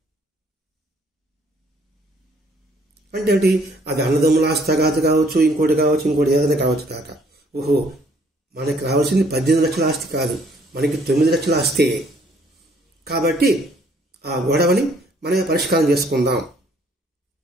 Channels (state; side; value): normal; both; correlation 0.63